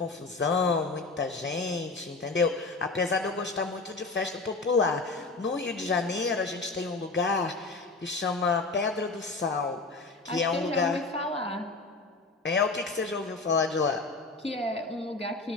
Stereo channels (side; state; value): right; quieter; 3.7 dB